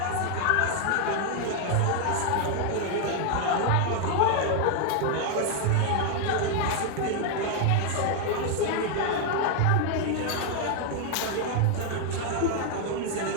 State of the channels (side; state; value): both; different; correlation 0.00